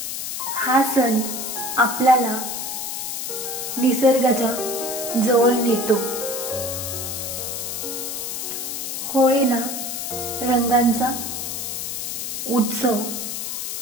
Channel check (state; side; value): noise; left; hiss, 4 dB below the sound